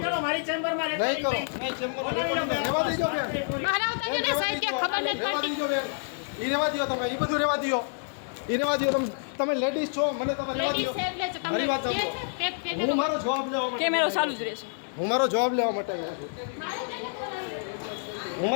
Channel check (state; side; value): silent; right; digital silence